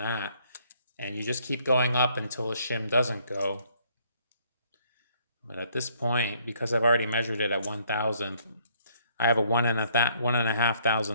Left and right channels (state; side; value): inverted; both; correlation -0.66